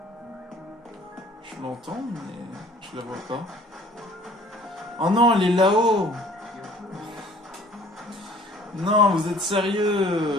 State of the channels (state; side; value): normal; both; correlation 0.53